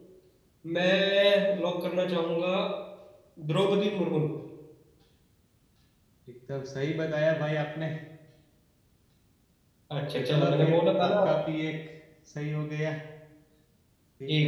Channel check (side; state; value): both; identical; correlation 1.00